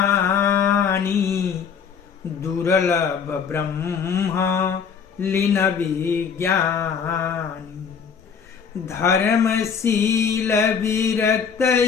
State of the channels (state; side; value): quieter; right; 6.6 dB